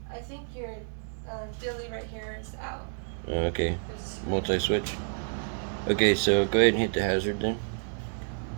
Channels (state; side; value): silent; left; digital silence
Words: I think your Billy right here is out. Okay, multi-switch. Okay, so go ahead and hit the hazard then.